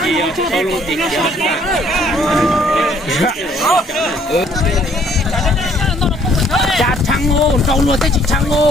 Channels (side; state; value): both; normal; correlation 0.62